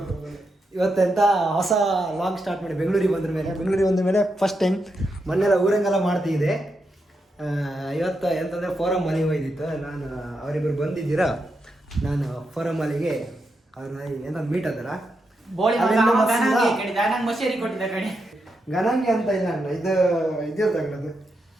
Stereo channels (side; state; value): both; normal; correlation 0.84